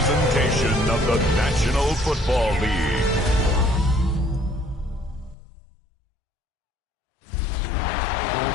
presentation of the National Football League. Well, if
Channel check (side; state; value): right; drops out; at 5.4 s